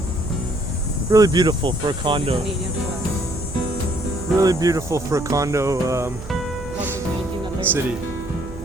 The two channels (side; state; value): right; noise; hum, 13 dB below the sound